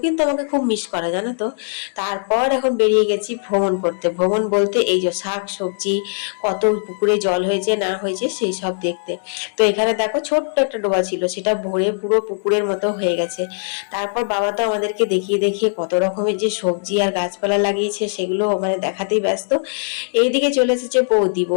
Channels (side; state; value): right; silent; digital silence